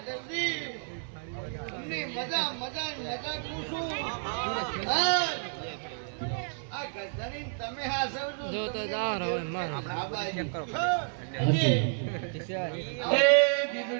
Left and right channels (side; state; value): left; silent; 57 dB below the other